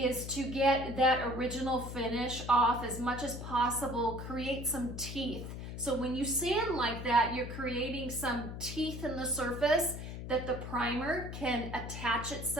to get that original finish off as much as possible, create some teeth. So when you sand like that, you're creating some teeth in the surface that the primer can attach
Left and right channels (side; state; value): left; noise; hum, 8 dB below the sound